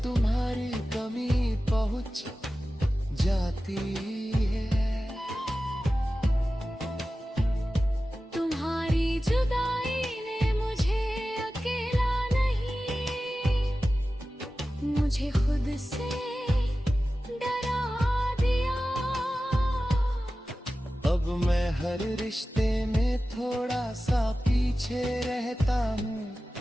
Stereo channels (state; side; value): normal; both; correlation 0.95